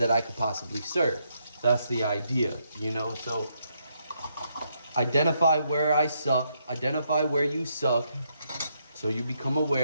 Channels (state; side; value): inverted; both; correlation -0.77